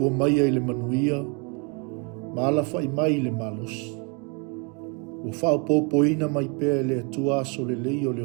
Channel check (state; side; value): quieter; left; 33.8 dB